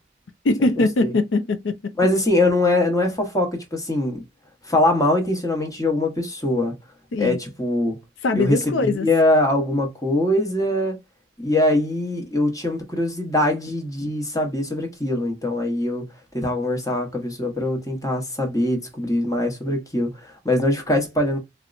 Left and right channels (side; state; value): both; normal; correlation 0.53